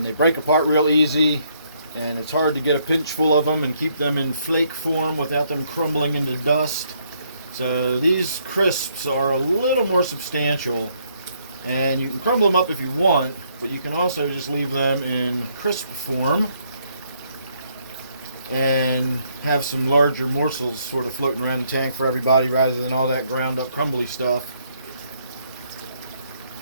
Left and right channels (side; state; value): both; inverted; correlation -0.71